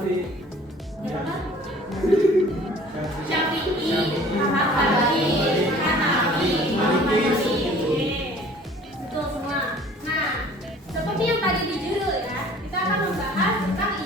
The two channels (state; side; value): normal; both; correlation 0.50